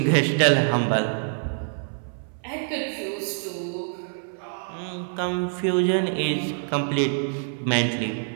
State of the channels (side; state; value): left; silent; 61 dB below the other